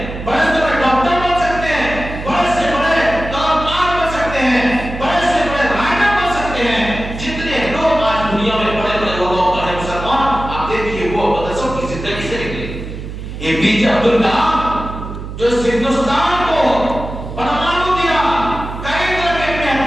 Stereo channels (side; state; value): right; noise; hum, 9 dB below the sound